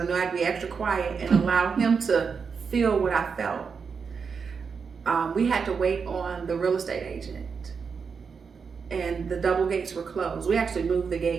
knew I had to be extra quiet and allow him to feel what I felt. We had to wait on the real estate agent, and the double gates were closed. We actually moved the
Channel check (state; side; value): quieter; left; 5.8 dB